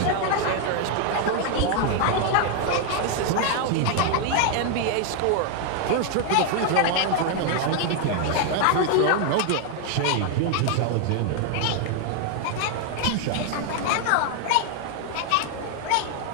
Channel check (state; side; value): different; both; correlation 0.00